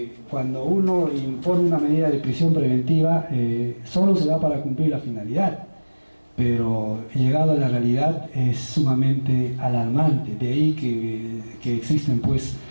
cuando uno impone una medida de prisión preventiva, solo se da para cumplir la finalidad, pero llegado a la realidad es sumamente alarmante. De ahí que existen pues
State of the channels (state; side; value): inverted; both; correlation -1.00